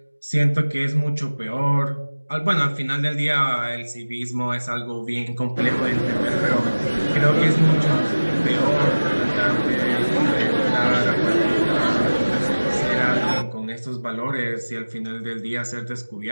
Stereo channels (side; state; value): both; inverted; correlation -1.00